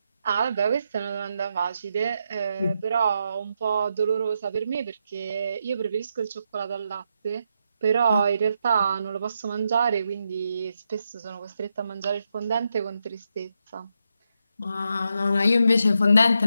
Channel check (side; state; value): both; inverted; correlation -0.83